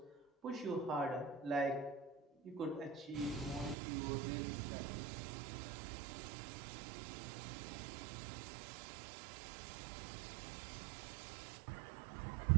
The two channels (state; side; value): drops out; left; at 3.8 s